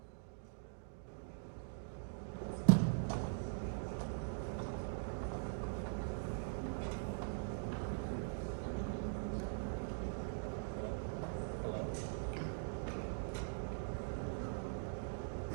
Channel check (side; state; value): left; silent; digital silence